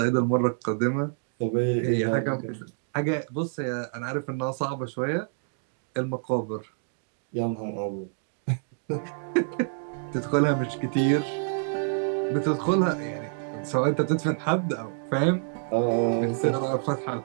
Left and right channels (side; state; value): left; silent; digital silence